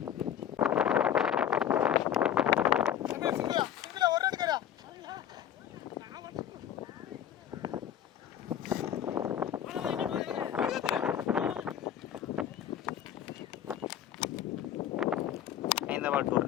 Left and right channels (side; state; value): right; quieter; 9.8 dB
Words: இந்த பால் 2